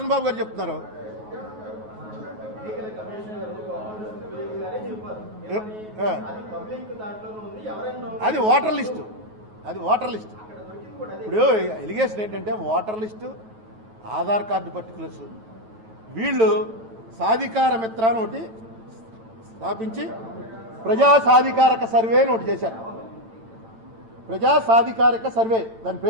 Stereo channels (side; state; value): left; late; 9.4 ms